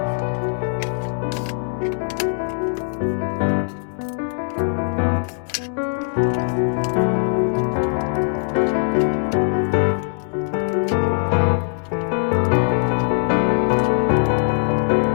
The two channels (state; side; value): silent; right; digital silence